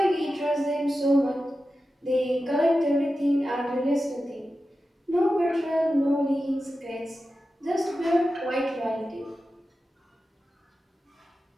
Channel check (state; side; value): normal; both; correlation 0.92